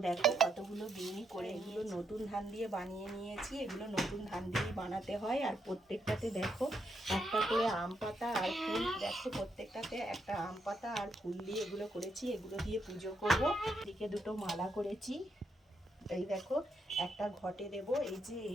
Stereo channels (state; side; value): normal; both; correlation 0.79